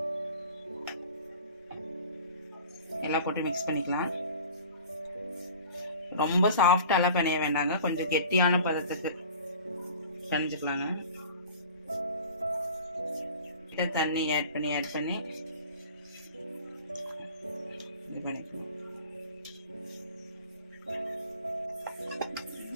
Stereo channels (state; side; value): inverted; both; correlation -0.42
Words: எல்லாம் போட்டு மிக்ஸ் பண்ணிக்கலாம். ரொம்ப சாஃப்டாலாம் பிணைய வேண்டாங்க, கொஞ்சம் கெட்டியான பதத்துக்கு பிணைஞ்சுக்கலாங்க. தண்ணி ஆட் பண்ணி இது பண்ணிக்கலாம்.